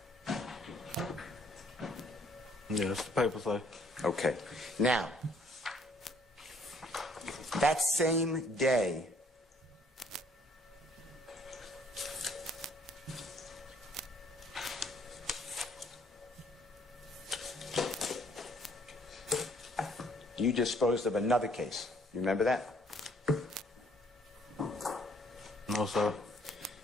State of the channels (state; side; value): normal; both; correlation 0.63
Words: Yeah, that's the paper say. Okay. Now, that same day, you disposed of another case. You remember that? No, sir.